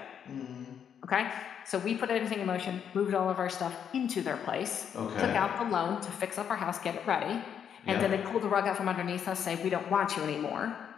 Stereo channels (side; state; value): right; quieter; 8.3 dB